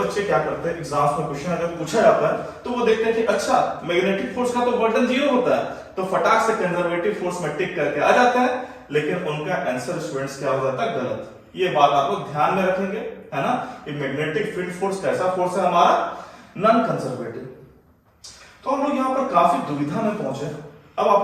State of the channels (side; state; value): both; identical; correlation 1.00